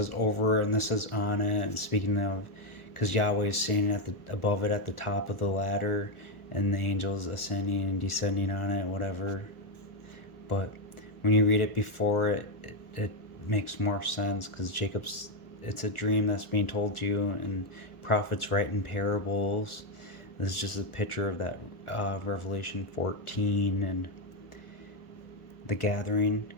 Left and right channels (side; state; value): right; late; 1.3 ms